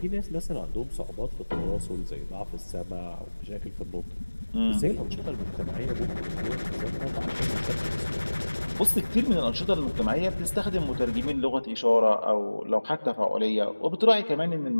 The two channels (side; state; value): both; inverted; correlation -1.00